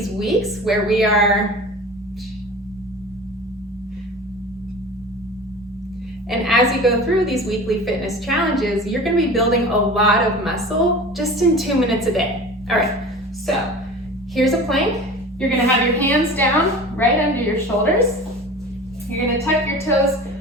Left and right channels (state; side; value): normal; both; correlation 0.37